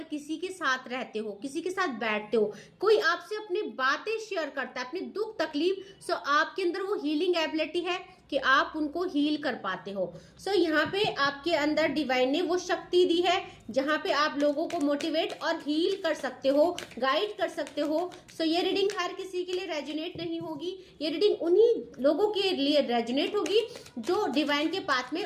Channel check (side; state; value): both; identical; correlation 1.00